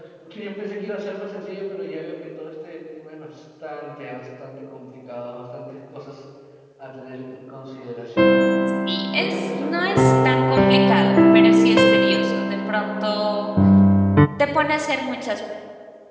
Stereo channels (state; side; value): identical; both; correlation 1.00